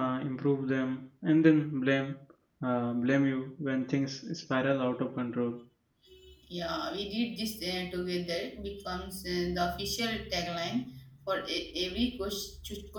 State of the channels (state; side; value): identical; both; correlation 1.00